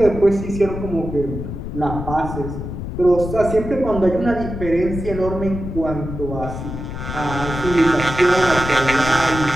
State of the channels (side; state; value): left; noise; rumble, 7 dB below the sound